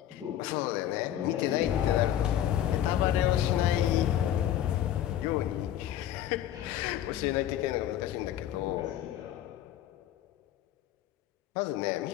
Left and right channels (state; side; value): quieter; right; 11.6 dB